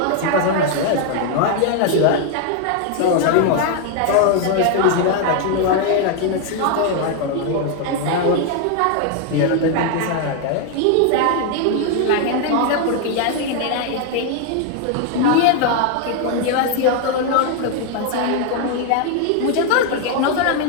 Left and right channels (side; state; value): both; different; correlation 0.00